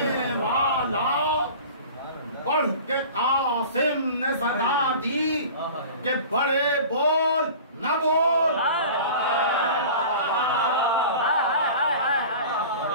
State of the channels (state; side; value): inverted; both; correlation -0.40